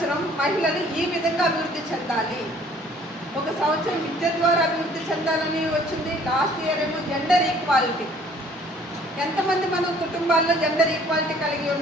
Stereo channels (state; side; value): normal; both; correlation 0.56